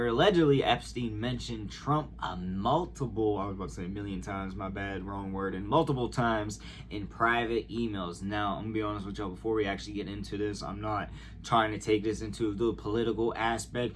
allegedly Epstein mentioned Trump I was about to say a million times, my bad, wrong word, and multiple times in private emails. Now, I'm gonna be honest with y'all, before we actually get into this, I'm not trying to take this into the political aspect,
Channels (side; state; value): both; identical; correlation 1.00